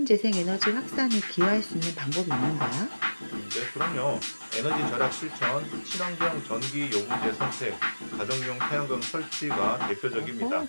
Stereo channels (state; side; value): inverted; both; correlation -1.00